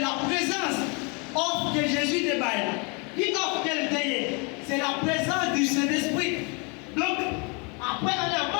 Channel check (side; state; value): right; quieter; 32.4 dB